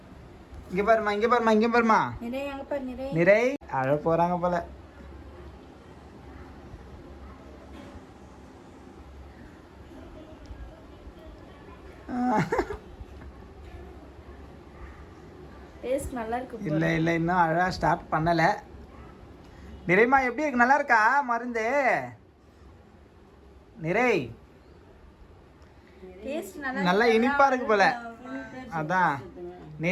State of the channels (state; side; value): identical; both; correlation 1.00